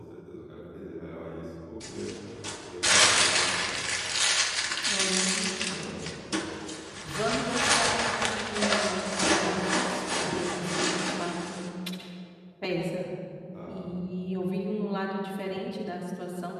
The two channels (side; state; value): both; identical; correlation 1.00